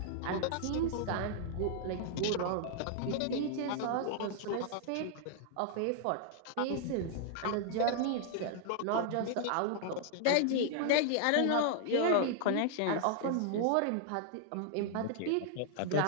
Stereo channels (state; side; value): different; both; correlation -0.01